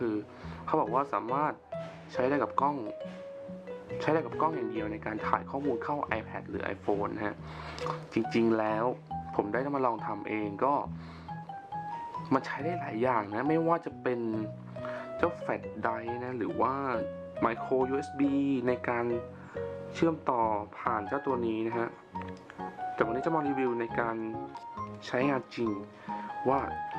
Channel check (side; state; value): both; identical; correlation 1.00